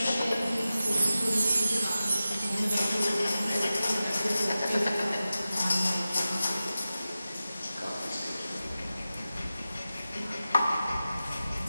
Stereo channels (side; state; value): both; inverted; correlation -0.94